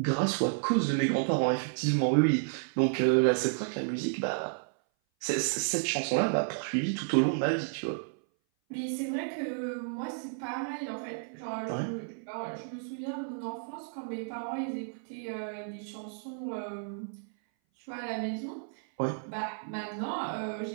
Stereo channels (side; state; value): left; silent; 57 dB below the other